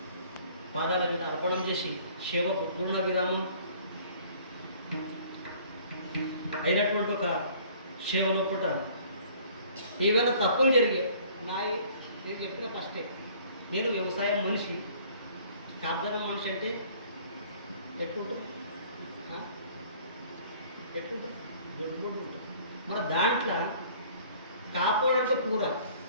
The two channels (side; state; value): both; inverted; correlation -0.54